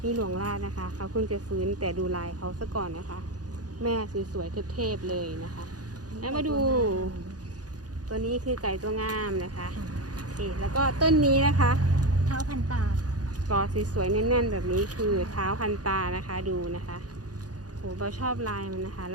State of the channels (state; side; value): late; left; 0.68 ms